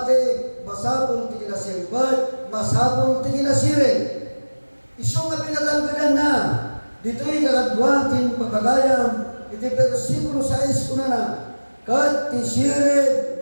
masabol ti kinasimpad masabol ti kinasiri. Iso nga pinatanggadan na dito'y kakadwatin pagkagayam iti versikulo 6 kuna na kat ti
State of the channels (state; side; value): inverted; both; correlation -1.00